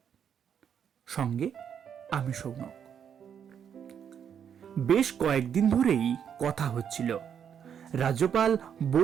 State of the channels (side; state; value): left; quieter; 8.2 dB